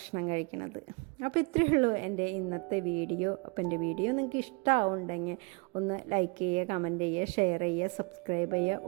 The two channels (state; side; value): quieter; left; 30.2 dB